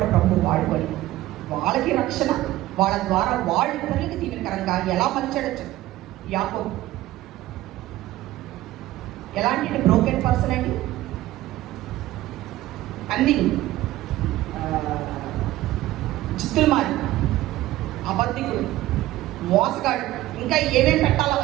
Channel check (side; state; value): left; quieter; 16.0 dB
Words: ప్రభు వాడుకొని వాళ్ళకి రక్షణ, వాళ్ళ ద్వారా వాళ్ళు ఇతరులకి దీవెనకరంగా ఎలా మలిచాడచ్చు. యాకోబు ఎలాంటి బ్రోకెన్ పర్సన్ అండి? అన్ని చిత్తులు మారి, అబద్ధికుడు, మోసగాడు, ఇంకా ఏమేమి పెట్టాలో